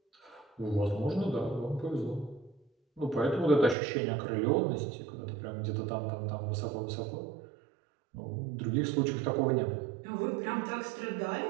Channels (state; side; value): drops out; left; at 3.8 s